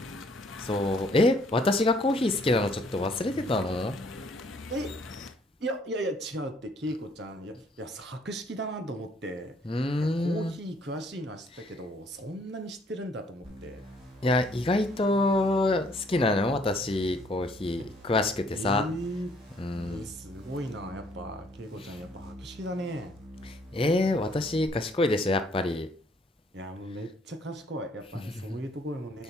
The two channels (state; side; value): normal; both; correlation 0.63